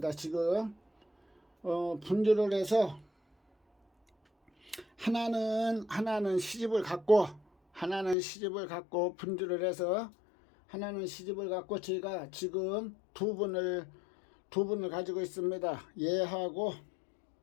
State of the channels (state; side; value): drops out; right; at 8.2 s